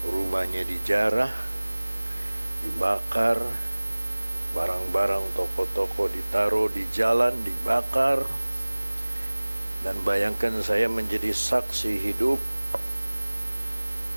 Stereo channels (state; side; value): inverted; both; correlation -1.00